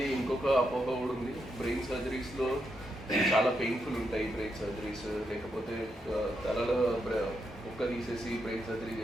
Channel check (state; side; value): normal; both; correlation 0.82